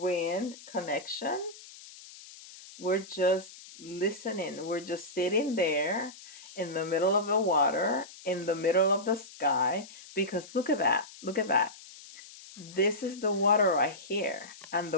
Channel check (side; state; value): left; noise; hiss, 18 dB below the sound